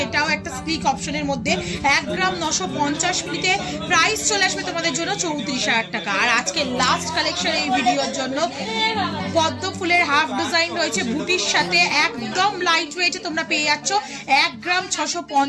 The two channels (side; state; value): both; identical; correlation 1.00